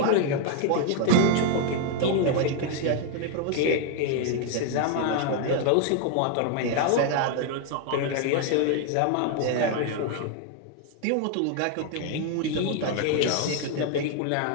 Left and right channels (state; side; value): different; both; correlation 0.00